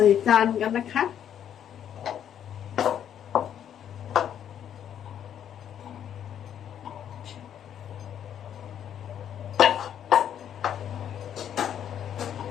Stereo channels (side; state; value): right; quieter; 9.6 dB